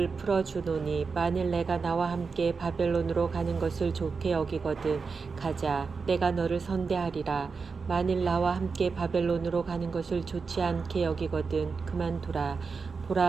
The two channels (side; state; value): left; quieter; 4.9 dB